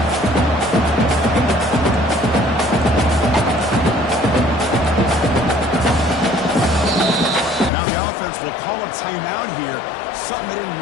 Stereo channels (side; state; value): right; drops out; at 7.7 s